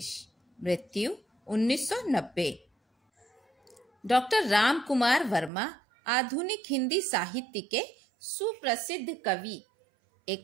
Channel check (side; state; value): left; drops out; at 5.5 s